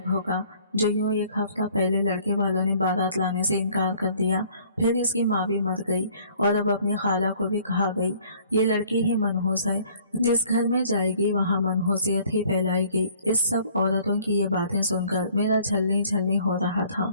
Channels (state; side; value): inverted; both; correlation -0.57